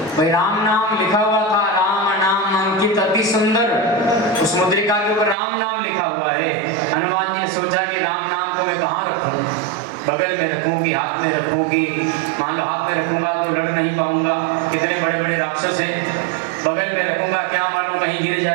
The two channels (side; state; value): left; drops out; at 5.4 s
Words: भाई राम नाम लिखा हुआ था, राम नाम अंकित अति सुंदर, उस मुद्रिका के ऊपर राम नाम लिखा हुआ है। हनुमान जी ने सोचा कि राम नाम को मैं कहाँ रखूं? बगल में रखूंगी, हाथ में रखूंगी, मान लो हाथ में रखूंगा तो लड़ नहीं पाऊंगा, कितने बड़े बड़े राक्षस हैं। बगल में रखूंगा क्या मालूम कहीं गिर